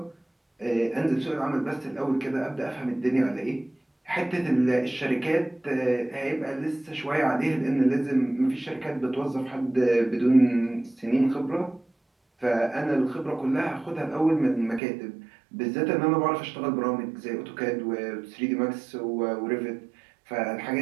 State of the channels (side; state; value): left; drops out; at 14.8 s